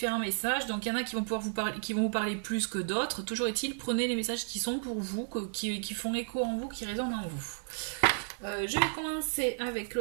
messages, donc il y en a qui vont pouvoir vous parler, qui vont vous parler plus que d'autres. Toujours est-il, prenez les messages qui sont pour vous, qui font écho en vous, qui résonnent en vous. Je vais commencer avec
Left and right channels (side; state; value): left; silent; digital silence